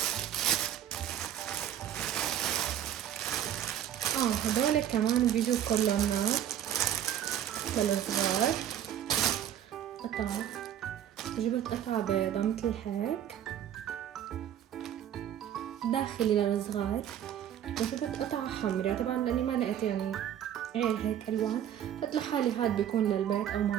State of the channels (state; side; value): quieter; left; 10.4 dB